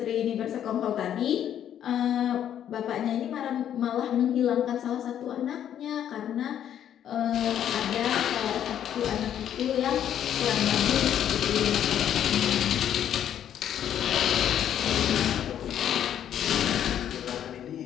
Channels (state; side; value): quieter; right; 10.1 dB